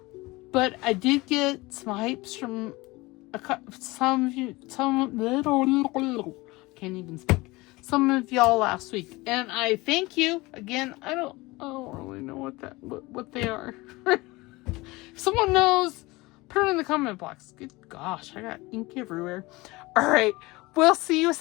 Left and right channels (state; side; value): quieter; right; 21.9 dB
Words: but I did get some Hypes from some of you, can't even speak. Some of y'all last week, and I thank you again. I don't really know what they are. If someone knows, put it in the comment box. Good gosh, I got ink everywhere. All right, we'll see you